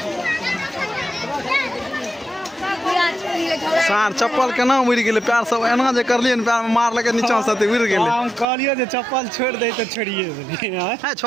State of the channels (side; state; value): left; drops out; at 8.5 s